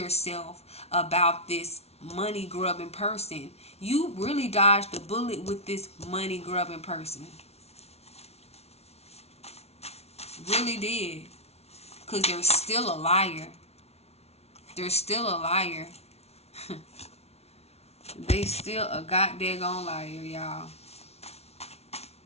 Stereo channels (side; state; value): right; late; 0.31 ms